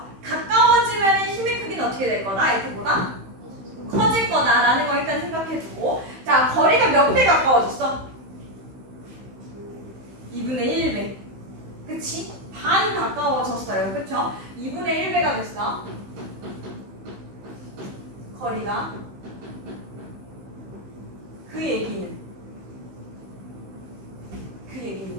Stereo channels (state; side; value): late; left; 15 ms